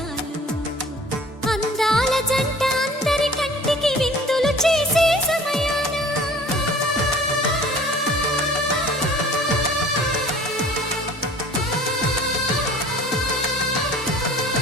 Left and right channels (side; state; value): both; normal; correlation 0.48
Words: అందాల జంట అందరి కంటికి విందులు చేసే సమయాన